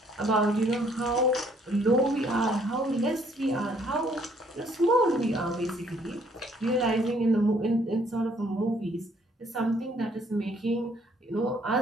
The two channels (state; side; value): normal; both; correlation 0.64